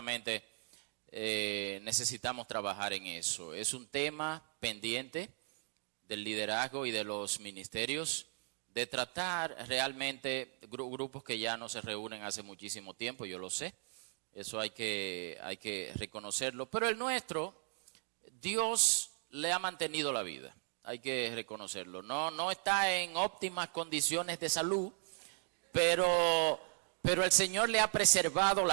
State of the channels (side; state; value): left; silent; 53 dB below the other